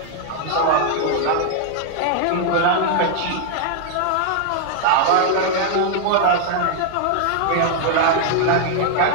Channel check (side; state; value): both; different; correlation 0.00